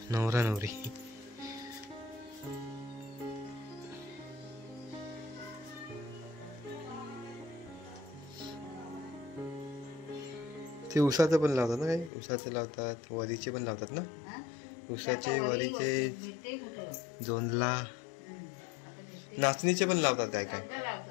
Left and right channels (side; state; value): right; drops out; at 12.1 s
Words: नवरा नवरी. ते उसाचं पण लावतात ना, काही उसाचं लावतात, वरीचे पण लावतात ना. उसाचे, वरीचे, जोंधला, नाचणीचे पण लावतात काय काय.